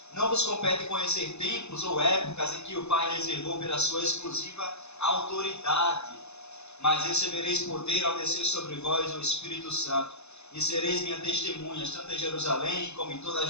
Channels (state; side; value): late; right; 0.81 ms